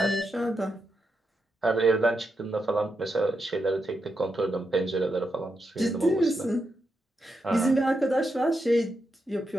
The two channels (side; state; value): both; normal; correlation 0.84